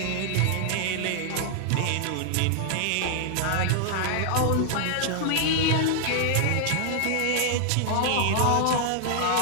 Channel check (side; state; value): both; different; correlation -0.01